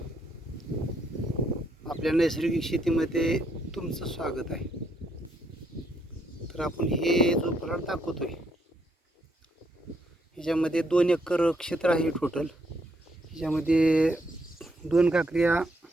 आपल्या नैसर्गिक शेतीमध्ये तुमचं स्वागत आहे. तर आपण हे जो प्लॉट दाखवतोय ह्याच्यामध्ये 2 एकर क्षेत्र आहे टोटल. ह्याच्यामध्ये 2 काकऱ्या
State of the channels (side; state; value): both; normal; correlation 0.73